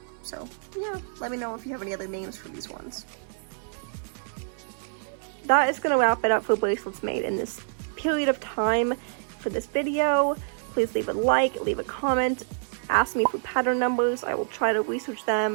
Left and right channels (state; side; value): silent; left; 59 dB below the other